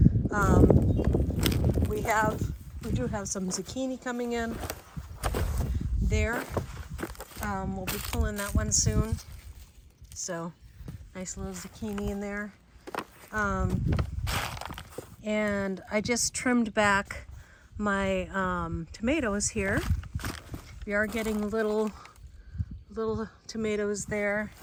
We do have some zucchini coming in there. We'll be pulling that one soon. So nice little zucchini in there. And I just trimmed back my tomatoes here. We are getting little tomatoes there.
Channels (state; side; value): identical; both; correlation 1.00